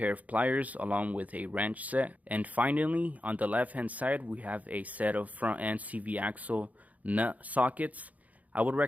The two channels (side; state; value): left; late; 0.074 ms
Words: of pliers along with a wrench set. And finally, on the left hand side we have a set of front end CV axle nut sockets. I would